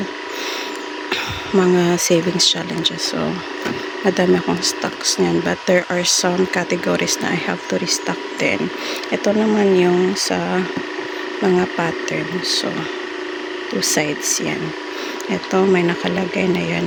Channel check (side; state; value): both; identical; correlation 1.00